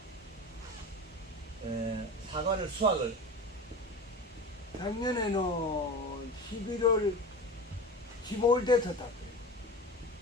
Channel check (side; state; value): both; normal; correlation 0.31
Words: 사과를 수확을 작년에는 11월 15일 돼서 땄어요.